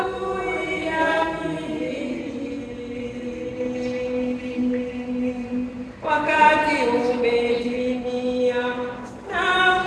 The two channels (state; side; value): identical; both; correlation 1.00